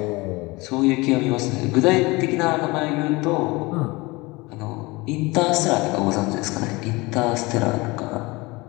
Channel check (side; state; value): right; quieter; 23.3 dB